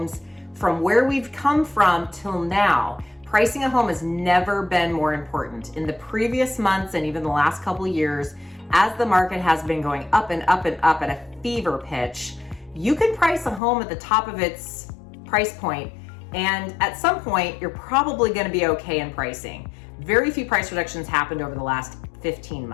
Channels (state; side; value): drops out; right; at 13.6 s